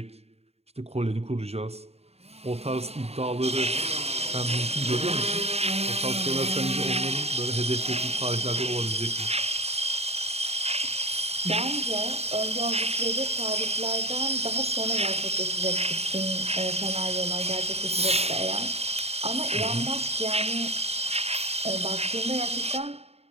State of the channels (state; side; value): late; left; 0.30 ms